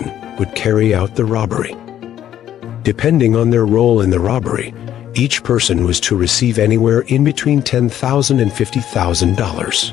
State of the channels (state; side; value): quieter; right; 11.2 dB